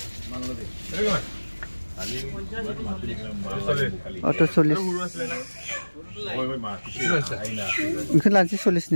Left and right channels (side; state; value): both; inverted; correlation -1.00